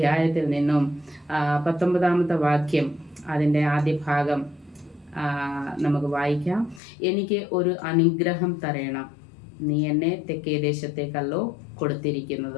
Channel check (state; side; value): drops out; right; at 6.8 s